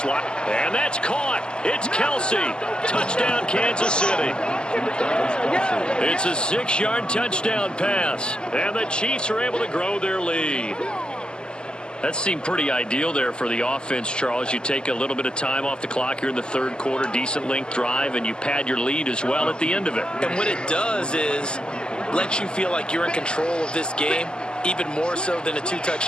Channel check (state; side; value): late; right; 0.047 ms